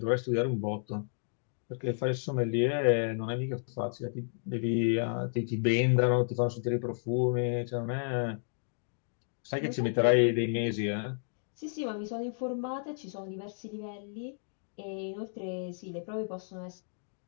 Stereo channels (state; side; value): silent; right; digital silence